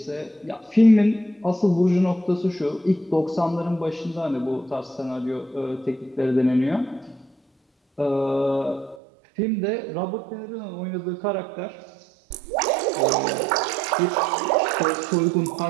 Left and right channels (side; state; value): left; drops out; at 9.0 s